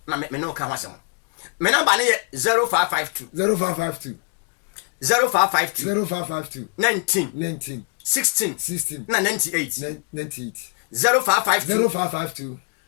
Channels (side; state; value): right; quieter; 37.7 dB